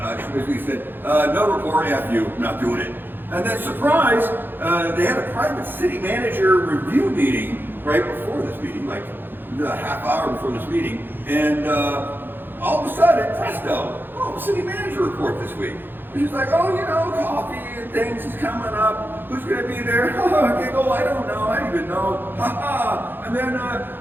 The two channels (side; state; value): left; late; 0.097 ms